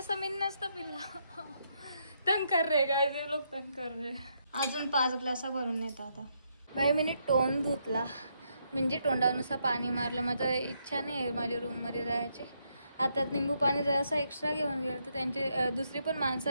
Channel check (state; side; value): inverted; both; correlation -0.77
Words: मी नसतं पिल्ला. तंग कर रे काय ते लोक तंग कर रे. अजून 5 ग्लास भरून नेता आता भाई. मी तोंड धुतला म्हणजे तोंडानुसार पाणी मारलं. माझं इच्छा नाही आहे माझ्या रूममध्ये जायची. आता निंबू पाणी जरासं एक्स्ट्रा घेऊन गेलं तर त्यांची दुसरी पण